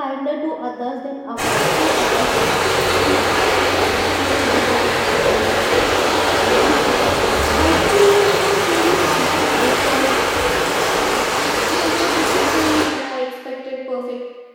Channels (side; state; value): both; identical; correlation 1.00